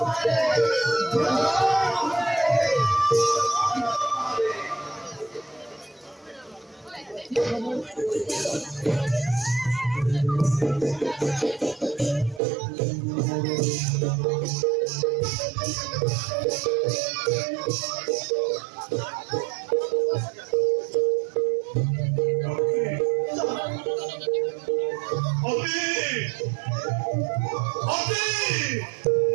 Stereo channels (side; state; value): left; drops out; at 12.4 s